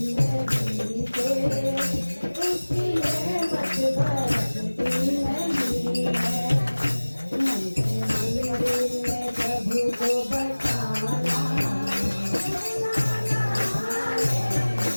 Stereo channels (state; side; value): inverted; both; correlation -1.00